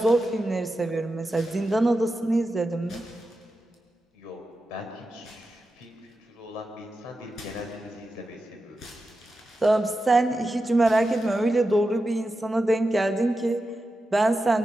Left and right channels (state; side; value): normal; both; correlation 0.90